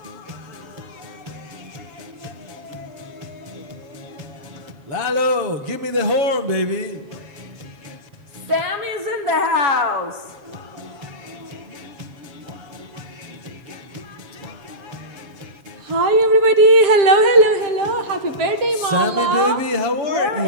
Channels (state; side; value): late; left; 7.4 ms